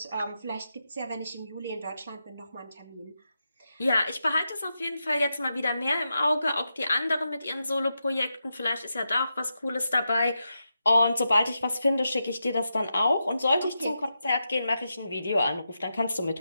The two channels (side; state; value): both; inverted; correlation -0.87